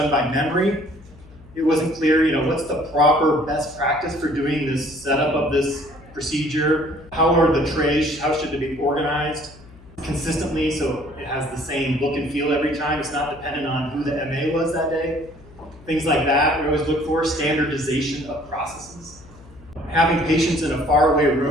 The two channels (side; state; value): left; noise; hum, 22 dB below the sound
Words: by memory. It wasn't clear, what's the proper best practice for doing this setup of this procedure? How are the trays, how should they be organized consistently so it has the same look and feel every time? It's not dependent on who the MA was that day. Things like that, we always look for standardization of processes. Having patients in a faraway